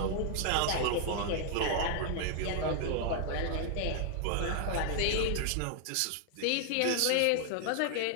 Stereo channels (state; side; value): different; both; correlation 0.00